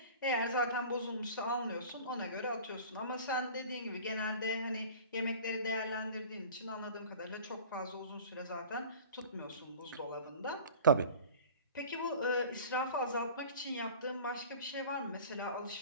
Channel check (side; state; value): both; inverted; correlation -0.41